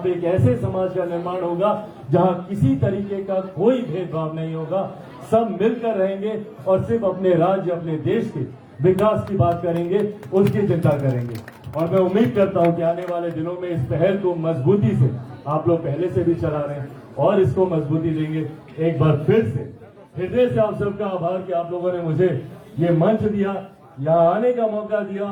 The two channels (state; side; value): identical; both; correlation 1.00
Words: एक ऐसे समाज का निर्माण होगा जहां किसी तरीके का कोई भेदभाव नहीं होगा। सब मिलकर रहेंगे और सिर्फ अपने राज्य, अपने देश के विकास की बात करेंगे, उसकी चिंता करेंगे। और मैं उम्मीद करता हूं कि आने वाले दिनों में इस पहल को मजबूती से, आप लोग पहले से भी चला रहे हैं और इसको मजबूती देंगे। एक बार फिर से हृदय से आप सबका आभार कि आप लोगों ने मुझे ये मंच दिया, यहाँ आने का मौका दिया